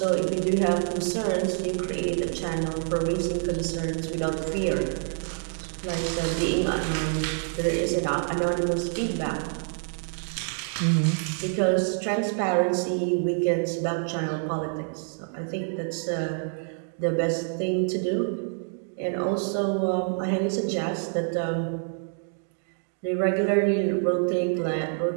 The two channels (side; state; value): left; silent; 58 dB below the other